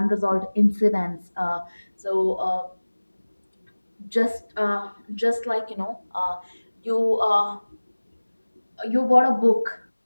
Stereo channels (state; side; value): inverted; both; correlation -1.00